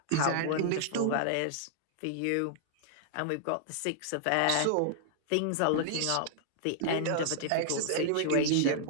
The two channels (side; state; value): both; different; correlation -0.01